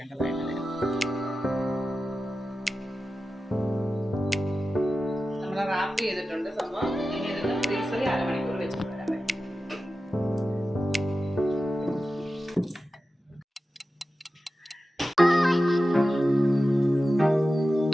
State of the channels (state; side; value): normal; both; correlation 0.93